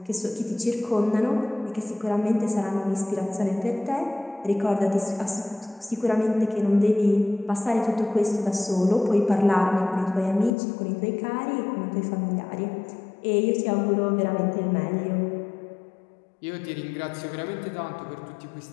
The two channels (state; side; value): drops out; right; at 10.5 s